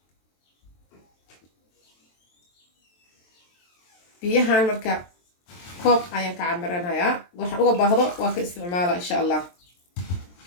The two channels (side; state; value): right; late; 23 ms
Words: بيهان مركا كوب أيان كعمرنا يا وحن أقول بهذا وك استعماله إن شاء الله